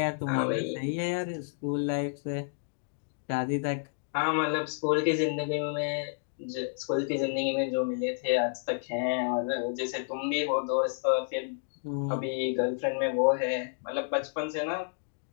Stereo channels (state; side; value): silent; right; digital silence